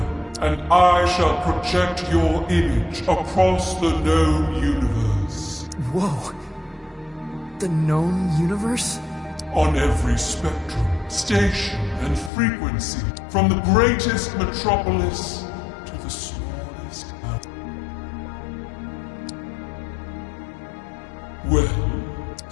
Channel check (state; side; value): drops out; right; at 12.3 s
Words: and I shall project your image across the known universe. Whoa. The known universe? On every spectrum, station, and frequency, from the greatest metropolis to the smallest town. Well,